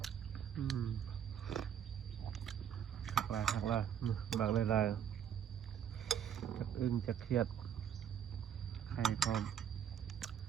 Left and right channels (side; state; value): left; quieter; 9.1 dB